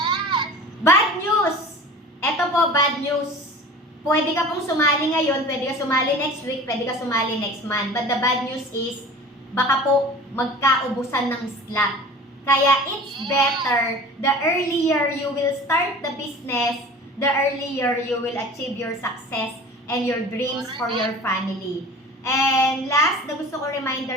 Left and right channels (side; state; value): both; normal; correlation 0.40